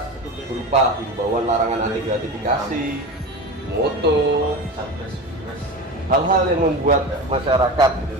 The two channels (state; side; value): normal; both; correlation 0.29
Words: berupa himbauan larangan anti gratifikasi, moto, hal-hal yang membuat masyarakat